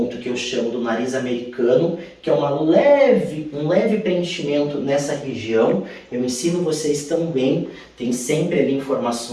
que eu chamo do nariz americano, que é um leve preenchimento nessa região. Eu ensino vocês também, tem sempre ali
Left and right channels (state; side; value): identical; both; correlation 1.00